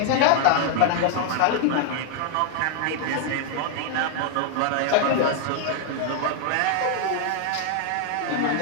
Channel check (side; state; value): both; different; correlation 0.00